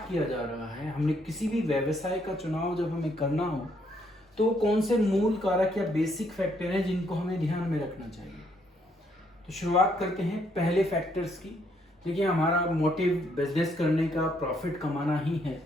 किया जा रहा है, हमने किसी भी व्यवसाय का चुनाव जब हमें करना हो तो कौन से मूल कारक या बेसिक फैक्टर हैं जिनको हमें ध्यान में रखना चाहिए। तो शुरुआत करते हैं पहले फैक्टर्स की। देखिए, हमारा मोटिव बिजनेस करने का प्रॉफिट कमाना ही है,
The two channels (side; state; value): both; normal; correlation 0.71